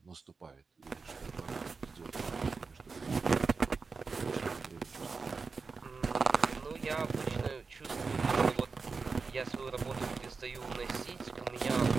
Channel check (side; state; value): left; quieter; 4.6 dB